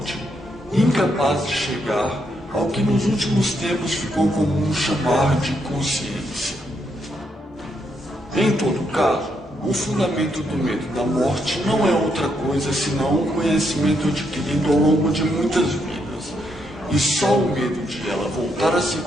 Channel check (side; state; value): both; normal; correlation 0.78